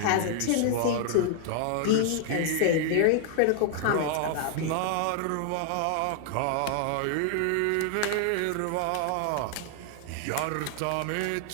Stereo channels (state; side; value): different; both; correlation 0.00